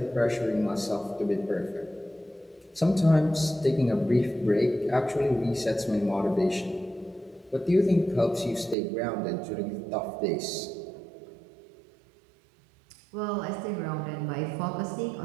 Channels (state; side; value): drops out; left; at 8.8 s